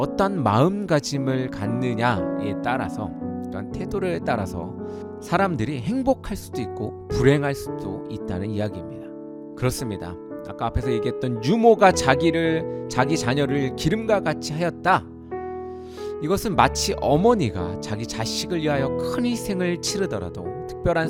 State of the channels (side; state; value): both; identical; correlation 1.00